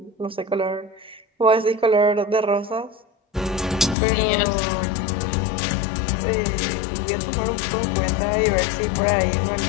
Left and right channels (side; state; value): right; drops out; at 4.0 s